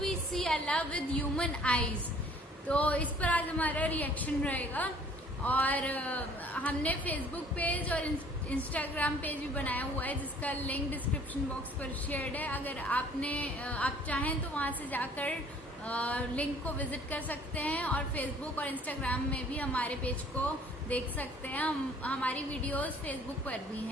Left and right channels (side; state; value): both; normal; correlation 0.55